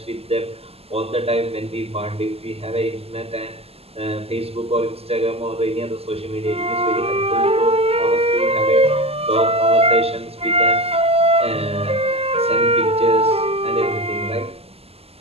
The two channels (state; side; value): late; left; 0.29 ms